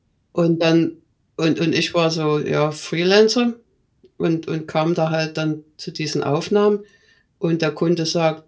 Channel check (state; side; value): identical; both; correlation 1.00